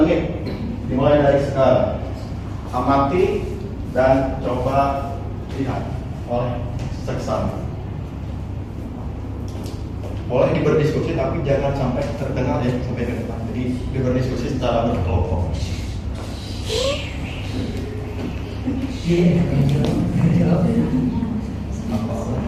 dimulai dari sekarang. Amati dan coba lihat oleh seksama. Boleh berdiskusi tapi jangan sampai terdengar ya sampai ke depan. Jadi berdiskusi secara berkelompok.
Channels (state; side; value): identical; both; correlation 1.00